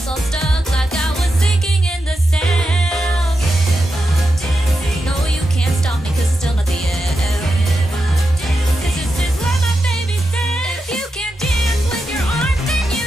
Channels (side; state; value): both; normal; correlation 0.88